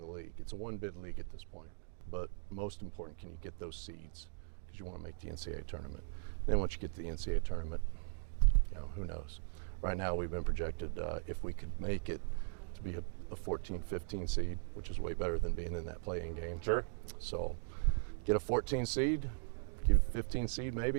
league. It's a one-bid league at this point. But most important, can you get those seeds? Because you want to make the NCAA tournament. Then once you get to the NCAA tournament, who knows? Right now we've been projected, if we could make it, to be a 14, 15 seed, which is way better than being in that play-in game. Sure. So get a 14 seed, give a 15 seed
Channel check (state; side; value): silent; left; digital silence